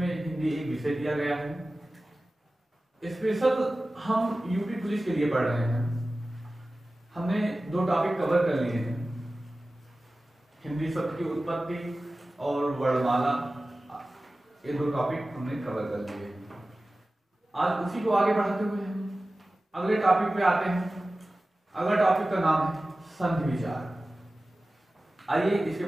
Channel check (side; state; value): both; normal; correlation 0.96